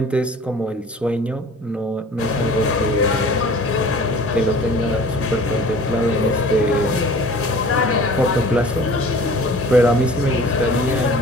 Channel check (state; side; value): normal; both; correlation 0.45